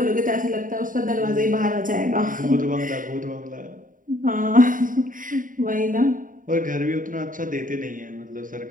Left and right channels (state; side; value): late; left; 0.39 ms